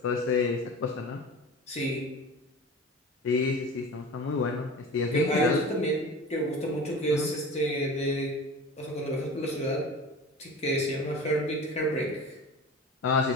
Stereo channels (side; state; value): both; normal; correlation 0.35